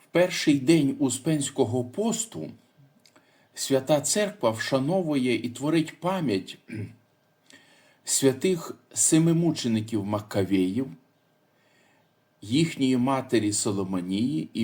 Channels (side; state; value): both; identical; correlation 1.00